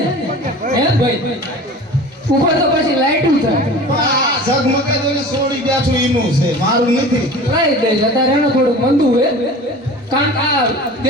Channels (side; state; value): both; normal; correlation 0.38